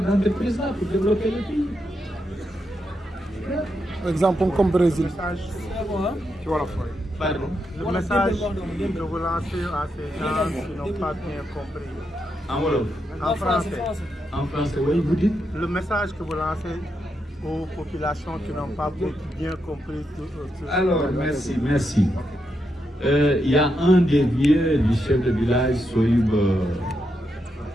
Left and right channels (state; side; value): normal; both; correlation 0.83